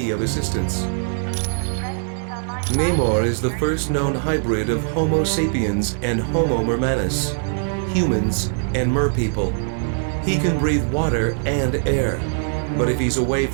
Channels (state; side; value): silent; left; digital silence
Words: of assistance? Namor is the first known hybrid of Homo sapiens and Homo mermanus, humans and merpeople. He can breathe water and air, but if he's away